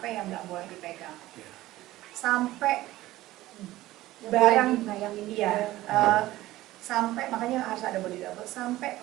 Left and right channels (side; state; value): left; quieter; 16.4 dB